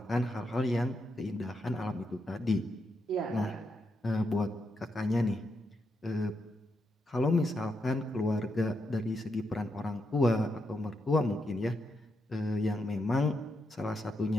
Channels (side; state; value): both; normal; correlation 0.82